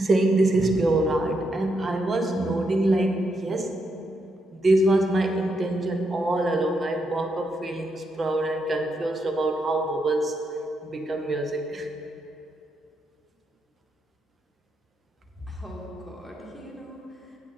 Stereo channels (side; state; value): both; normal; correlation 0.81